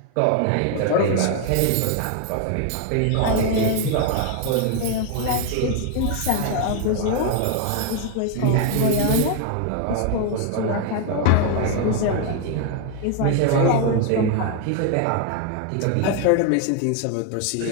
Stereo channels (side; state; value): both; different; correlation 0.01